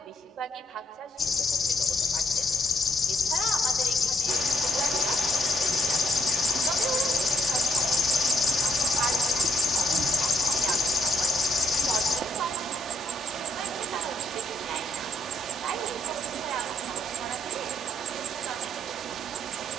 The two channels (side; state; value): both; normal; correlation 0.69